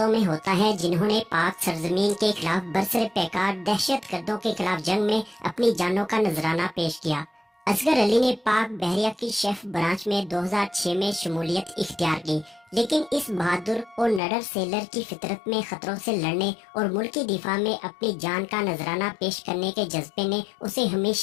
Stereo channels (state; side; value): drops out; right; at 14.2 s